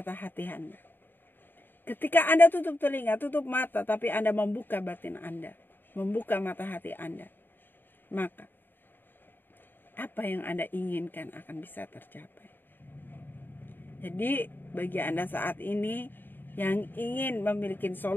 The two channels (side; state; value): right; late; 0.094 ms